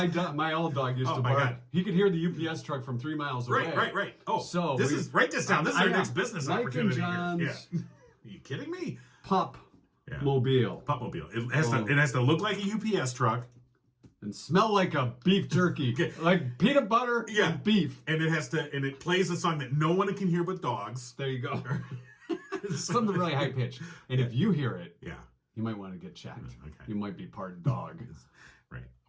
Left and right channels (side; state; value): both; identical; correlation 1.00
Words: my old dog used to my bark. God. He could hear the UPS truck from 3 miles away. Right. Oh, So write this down. This is our know. next business Mike opportunity. and Here. John's Yeah. Are you kidding me? Pup Yeah. mobile Pupmobile. It has to look like a UPS truck, and smell like a beef jerky, like peanut butter and beef. and it plays a song that no one can hear but dogs. There you go. Something really high pitched. And if you hear it, Yeah. you might want to get checked. Okay. You might be part dog. Right.